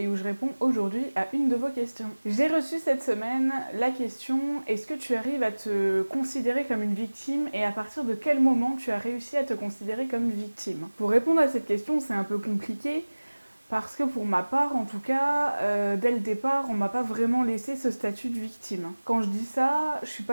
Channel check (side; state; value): both; inverted; correlation -1.00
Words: où je réponds aujourd'hui à une de vos questions. J'ai reçu cette semaine la question: est-ce que tu arrives à te considérer comme une victime et à partir de quel moment tu as réussi à te considérer comme victime? Pour répondre à cette question, c'est un peu compliqué parce que pour ma part, en tout cas, dès le départ, on m'a pas vraiment laissé ce statut de victime. Quand je dis ça, je suis